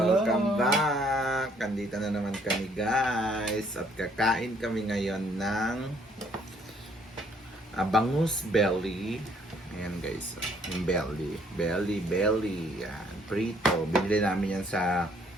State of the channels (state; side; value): normal; both; correlation 0.65